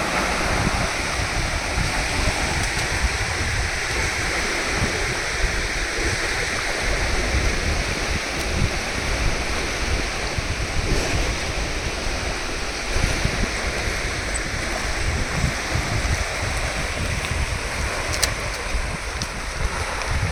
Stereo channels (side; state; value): both; identical; correlation 1.00